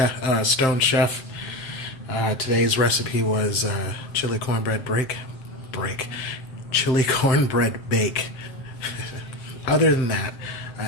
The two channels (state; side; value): late; right; 7.7 ms